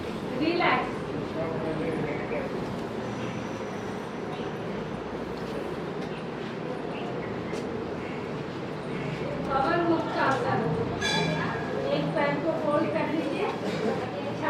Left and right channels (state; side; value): identical; both; correlation 1.00